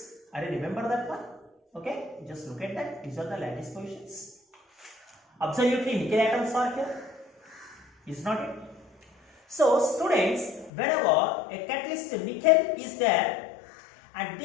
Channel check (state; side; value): drops out; right; at 10.7 s